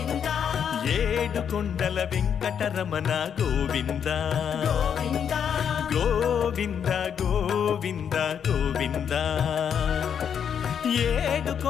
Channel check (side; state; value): right; quieter; 7.9 dB